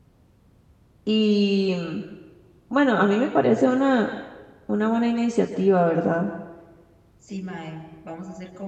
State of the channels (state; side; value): identical; both; correlation 1.00